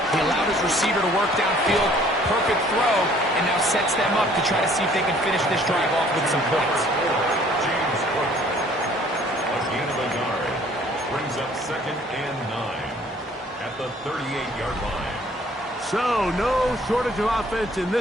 He allowed his receiver to work downfield. Perfect throw, and now sets them up to try to see if they can finish this drive off with some points. James Cook. A gain of a yard. Brings up 2nd and 9 at the 38-yard line. So no shortage of offense in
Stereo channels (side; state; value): both; normal; correlation 0.57